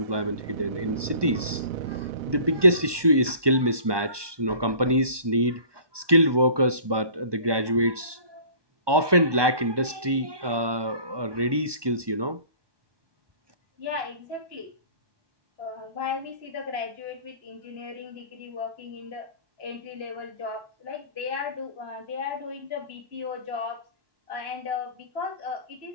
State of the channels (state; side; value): late; left; 1.2 ms